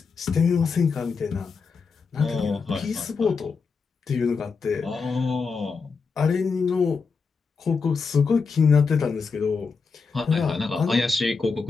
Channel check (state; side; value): quieter; right; 5.0 dB